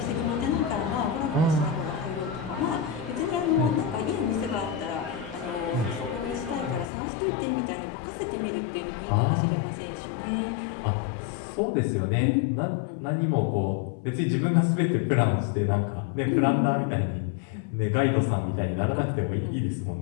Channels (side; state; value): right; drops out; at 6.9 s